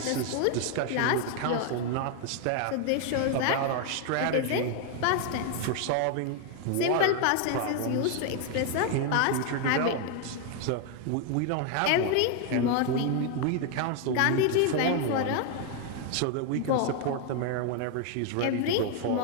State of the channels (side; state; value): both; different; correlation 0.01